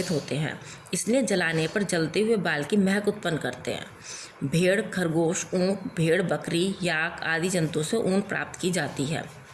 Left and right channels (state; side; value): identical; both; correlation 1.00